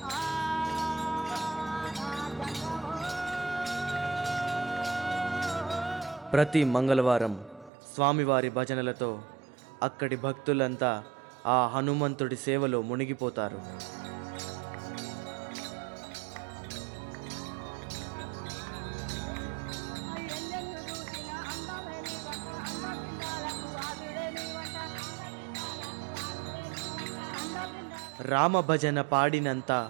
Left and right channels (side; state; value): left; drops out; at 7.7 s